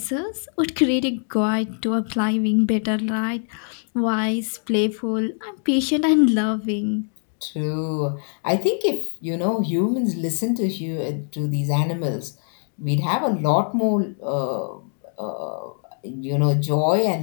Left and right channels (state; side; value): silent; right; 55 dB below the other